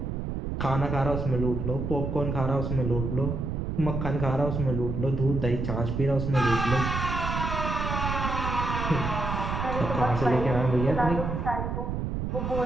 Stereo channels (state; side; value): noise; right; rumble, 2 dB below the sound